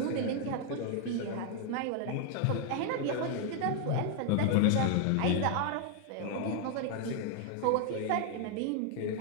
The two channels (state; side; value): different; both; correlation 0.00